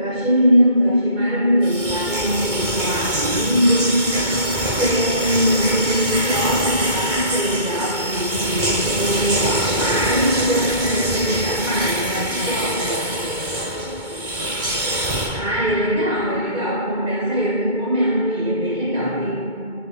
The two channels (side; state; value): left; late; 2.2 ms